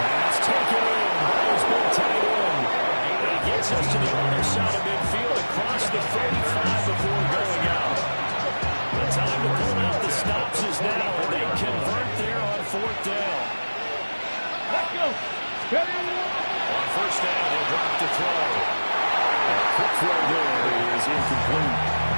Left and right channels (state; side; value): inverted; both; correlation -1.00